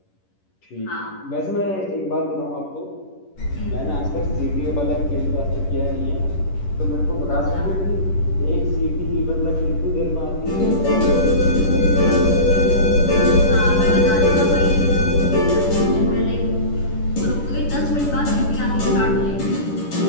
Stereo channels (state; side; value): late; right; 10 ms